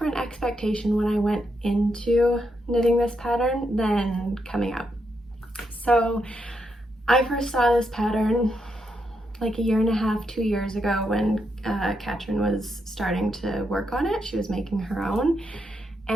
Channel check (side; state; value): both; normal; correlation 0.81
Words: expectation when I went into knitting this pattern than coming out. So I first saw this pattern like a year and a half, 2 years ago when Katryn was starting to work on it. She was making her own,